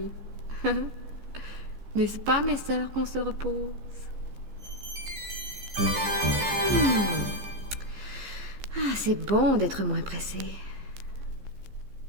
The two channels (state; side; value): late; left; 15 ms